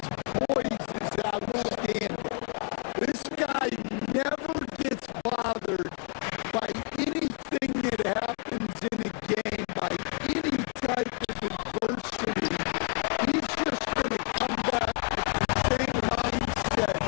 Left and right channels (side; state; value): right; quieter; 37.1 dB